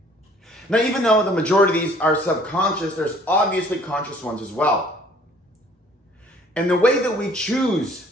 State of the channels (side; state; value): both; normal; correlation 0.56